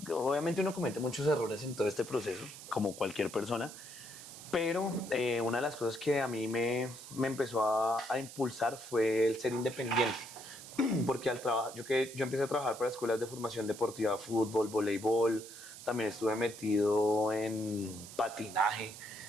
obviamente uno comete muchos errores en todo este proceso, como cualquier persona, pero una de las cosas que a mí me empezó a impulsar fue el ser independiente. Porque al trabajar, yo empecé a trabajar para escuelas de formación deportiva, fútbol, voleibol, también estuve metido en patinaje,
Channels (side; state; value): right; noise; hiss, 14 dB below the sound